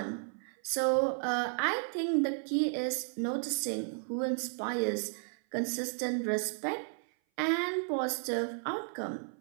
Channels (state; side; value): silent; left; 55 dB below the other